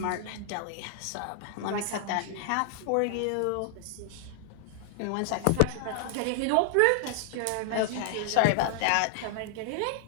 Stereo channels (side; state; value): both; different; correlation -0.01